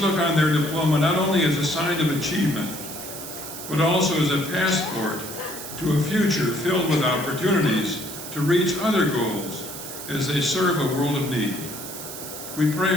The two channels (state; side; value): noise; right; hiss, 10 dB below the sound